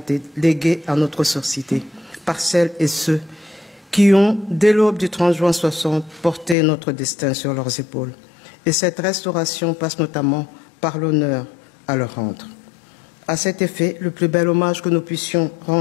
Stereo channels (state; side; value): drops out; right; at 6.6 s